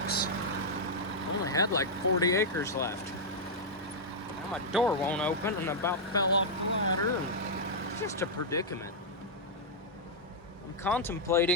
I only had like 40 acres left. Now my door won't open, and I about fell off the ladder, and it's just a predicament. I'm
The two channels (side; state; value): both; normal; correlation -0.06